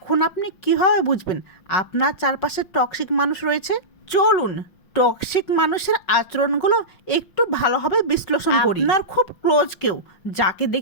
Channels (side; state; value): right; late; 5.4 ms